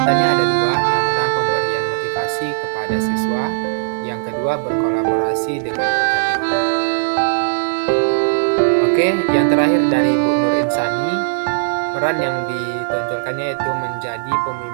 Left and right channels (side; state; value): left; silent; digital silence